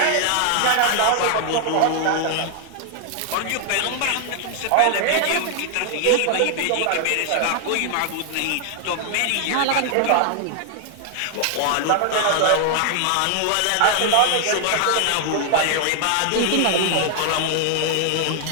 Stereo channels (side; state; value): both; different; correlation 0.00